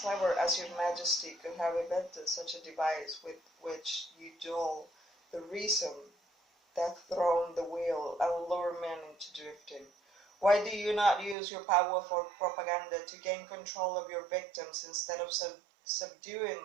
as your majesty could have invented such a device with which you dull the reason, that thrown the wheel, and lure men into drifting. Why do you not use your powerful propaganda to gain control of your victims instead of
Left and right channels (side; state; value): left; drops out; at 11.4 s